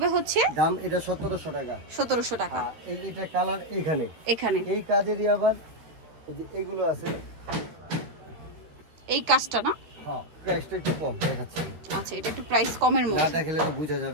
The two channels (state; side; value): late; left; 13 ms